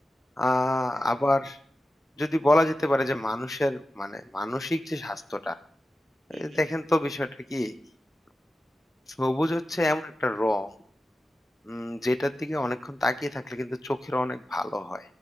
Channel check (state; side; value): normal; both; correlation 0.93